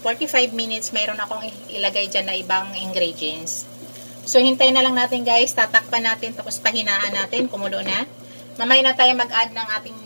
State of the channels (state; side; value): inverted; both; correlation -1.00